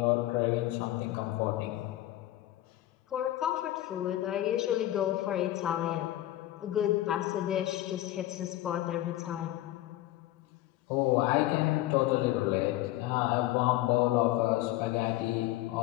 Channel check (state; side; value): quieter; right; 15.2 dB